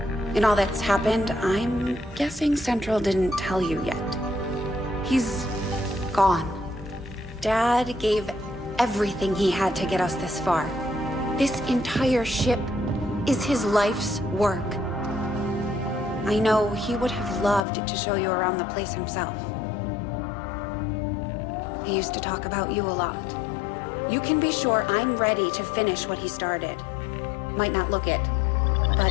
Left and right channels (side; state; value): right; drops out; at 17.6 s